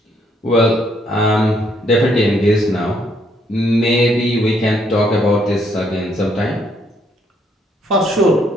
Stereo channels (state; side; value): normal; both; correlation 0.70